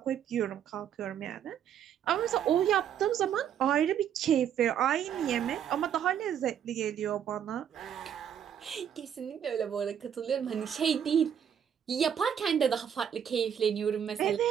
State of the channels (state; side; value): quieter; left; 8.9 dB